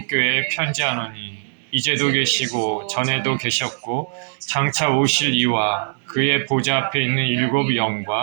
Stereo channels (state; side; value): silent; left; digital silence